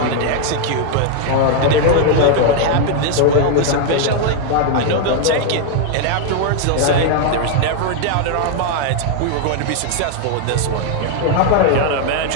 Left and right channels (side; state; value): both; different; correlation 0.00